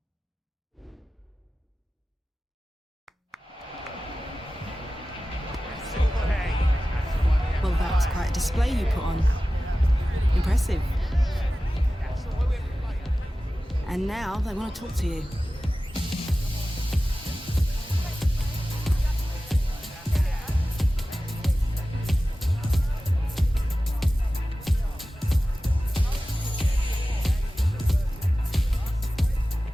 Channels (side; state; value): both; normal; correlation 0.95